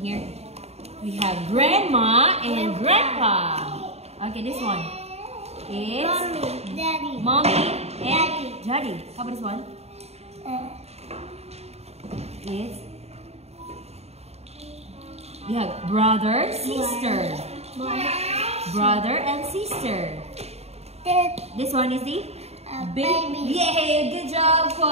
here. We have grandma and grandpa. Okay, this one is Mommy, Daddy. mommy and daddy. How about this one? Is we have brother, sister. Brother and sister. This one is the Baby. Yay! Good job,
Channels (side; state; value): left; late; 0.30 ms